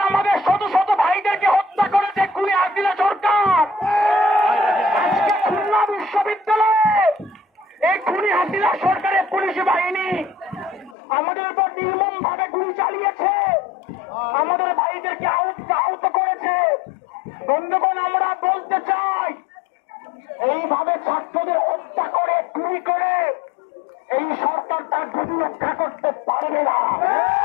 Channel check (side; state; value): right; drops out; at 11.0 s